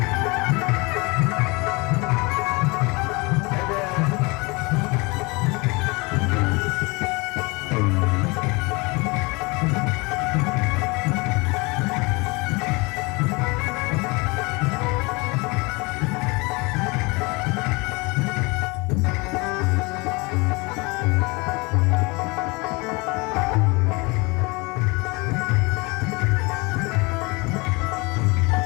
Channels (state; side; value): quieter; right; 26.6 dB